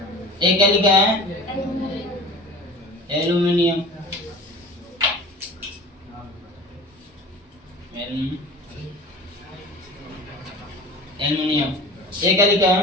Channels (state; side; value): normal; both; correlation 0.38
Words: ये क्या लिखा है? एल्युमिनियम। एल्युमिनियम। ये क्या लिखा